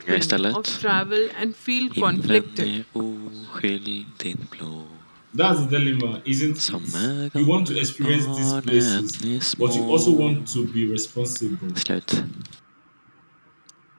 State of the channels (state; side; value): inverted; both; correlation -1.00